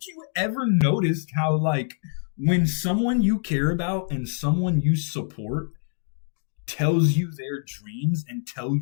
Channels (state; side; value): silent; right; digital silence